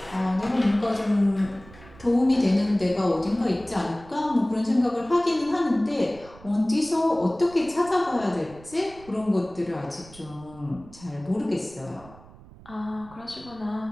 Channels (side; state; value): right; noise; rumble, 21 dB below the sound